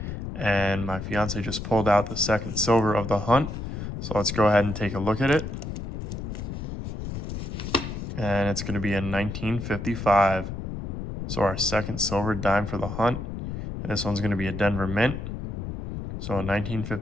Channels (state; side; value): noise; left; rumble, 6 dB below the sound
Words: And my fiance just pulled out the second silver of the hunt. So let's go ahead and take a look at it. And it's going to be a 1955. So our second silver dime for the hunt. And this one's going to be a Denver Mint. So a